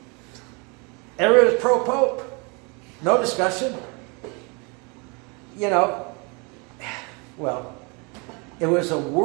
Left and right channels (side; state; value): left; quieter; 30.8 dB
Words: Everybody was pro-Pope. No discussion. You know, well, it was a